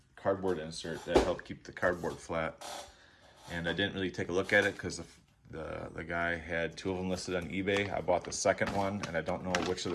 cardboard insert that helped keep the cardboard flat. And I didn't really take a look at it because the guy had 2 of them listed on eBay. I bought the second one, and I don't know which of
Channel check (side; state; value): both; identical; correlation 1.00